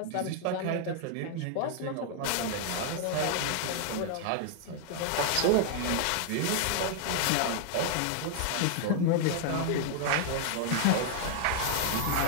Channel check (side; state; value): both; different; correlation 0.00